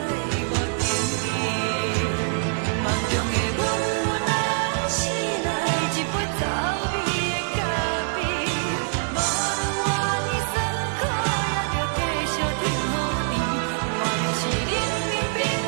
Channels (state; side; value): silent; left; 62 dB below the other